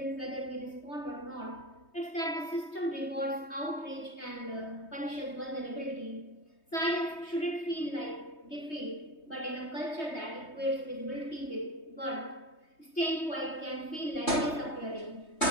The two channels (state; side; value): late; right; 3.2 ms